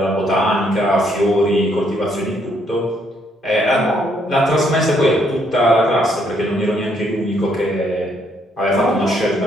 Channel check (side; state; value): both; normal; correlation 0.71